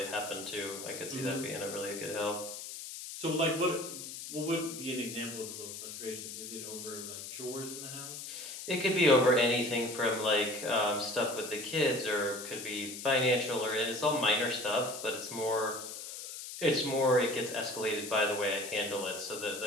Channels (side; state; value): left; noise; hiss, 9 dB below the sound